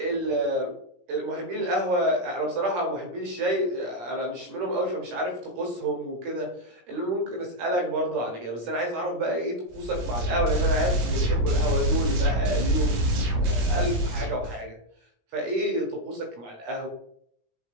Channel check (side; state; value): left; late; 17 ms